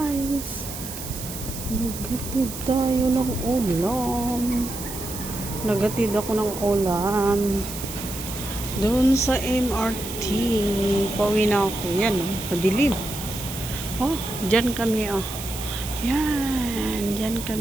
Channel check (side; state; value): right; noise; hiss, 9 dB below the sound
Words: Nagatid tayo ng ulam. Nagatid ako ng ulam. Doon sa MRT. Pauwi na ako. Yan oh. Madilim. Oh, dyan kami oh. Yan. Dyan